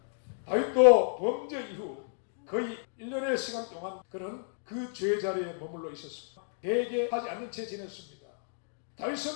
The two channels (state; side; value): silent; right; digital silence